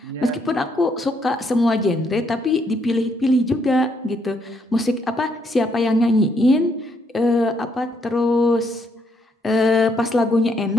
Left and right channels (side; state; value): both; normal; correlation 0.73